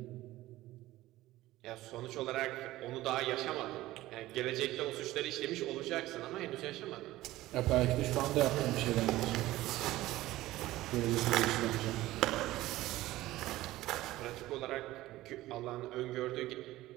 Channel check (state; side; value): quieter; left; 16.6 dB